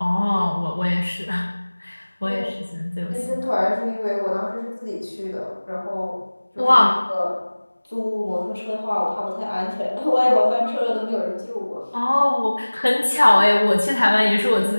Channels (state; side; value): inverted; both; correlation -1.00